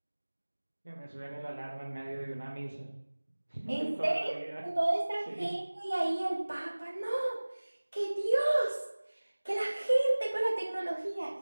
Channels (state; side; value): inverted; both; correlation -1.00